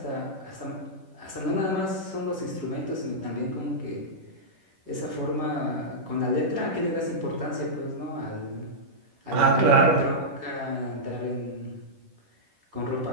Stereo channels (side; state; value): left; late; 10 ms